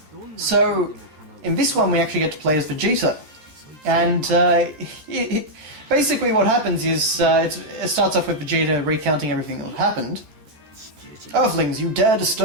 So in this one we actually get to play as Vegeta. And basically what happens is, it starts off with Vegeta recounting everything that happened. Earthlings, you dare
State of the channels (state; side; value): late; left; 13 ms